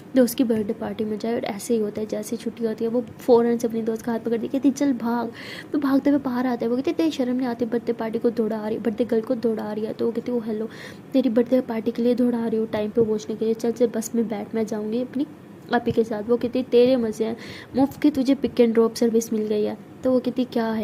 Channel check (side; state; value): both; identical; correlation 1.00